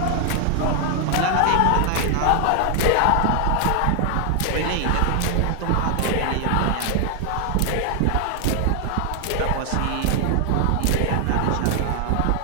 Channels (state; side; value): different; both; correlation 0.00